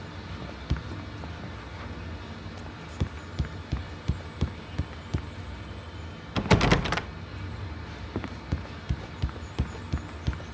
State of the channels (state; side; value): identical; both; correlation 1.00